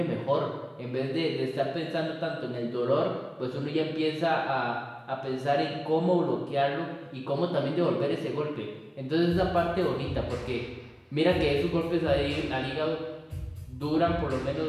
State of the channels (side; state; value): both; identical; correlation 1.00